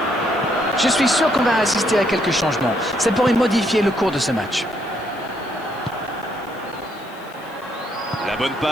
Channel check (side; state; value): left; noise; hiss, 26 dB below the sound